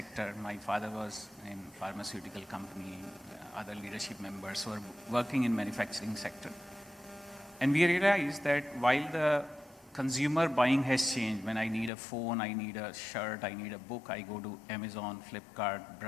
My father was in pharmaceutical company, other leadership members were working in manufacturing sector. And we realized that while the consumer buying has changed, when I need a phone, I need a shirt, I need a book, I go to Amazon, Flipkart,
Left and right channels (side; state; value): right; drops out; at 11.9 s